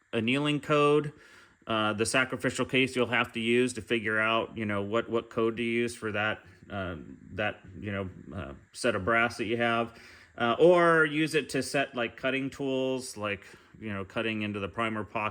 annealing code. The sacrificial case you'll have to use to figure out, what code to use for that set of brass that you have. Or use it to set like cutting tools, like, cutting into the primer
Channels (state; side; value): identical; both; correlation 1.00